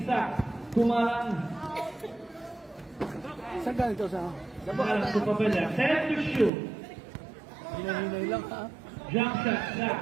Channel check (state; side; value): drops out; left; at 6.5 s